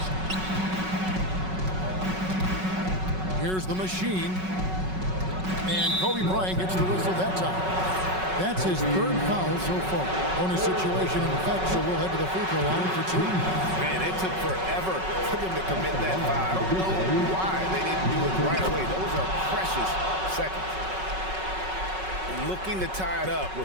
Here's the machine. And Kobe Bryant gets the whistle that time. That's his third foul so far. Bonus situation in effect, so we'll head to the free throw line for two. Man, it took forever for them to commit that foul. I don't know why they didn't do it right away. Those are precious seconds. Looking to tie it up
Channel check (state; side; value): late; left; 5.4 ms